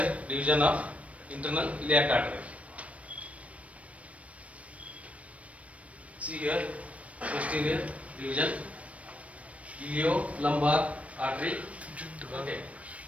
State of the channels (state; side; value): late; left; 0.065 ms